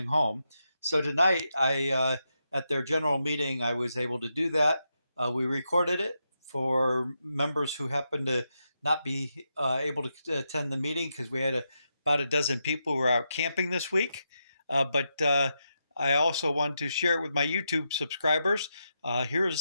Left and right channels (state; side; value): inverted; both; correlation -0.85